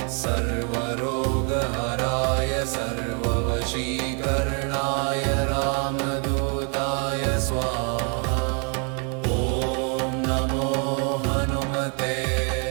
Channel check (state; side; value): quieter; left; 38.5 dB